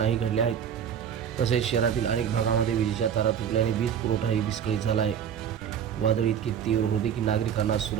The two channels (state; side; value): quieter; left; 8.4 dB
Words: घडल्या आहेत। तसेच शहरातील अनेक भागामध्ये विजेच्या तारा तुटल्याने वीज पुरवठाही विस्कळीत झाला आहे। वादळ इतकी तीव्र होते की नागरिकांना